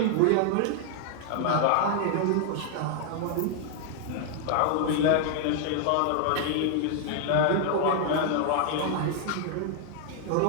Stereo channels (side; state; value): both; different; correlation 0.00